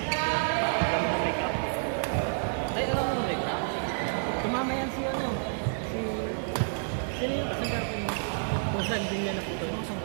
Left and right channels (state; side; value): silent; left; digital silence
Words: Alam mo make up. Ay, alam mo make up? Tumama yan si ano? Sino yung kasagap niya? Kung saan din niya naputo?